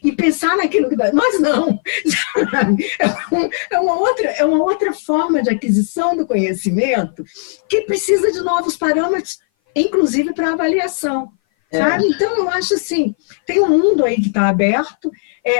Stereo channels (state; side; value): silent; right; 59 dB below the other